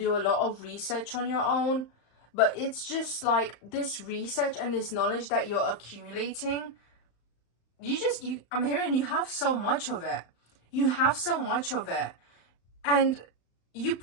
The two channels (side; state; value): right; late; 35 ms